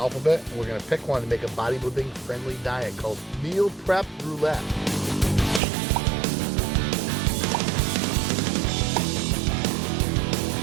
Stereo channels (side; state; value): left; drops out; at 5.6 s